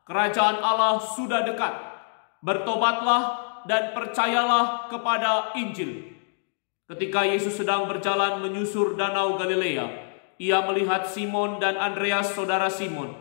kerajaan Allah sudah dekat. Bertobatlah dan percayalah kepada Injil. Ketika Yesus sedang berjalan menyusur danau Galilea, ia melihat Simon dan Andreas, saudara Simon.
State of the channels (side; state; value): right; silent; digital silence